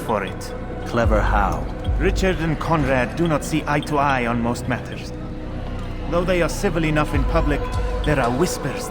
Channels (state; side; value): identical; both; correlation 1.00